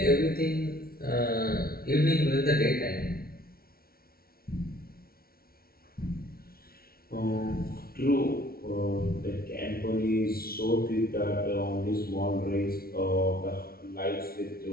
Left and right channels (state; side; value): late; right; 0.44 ms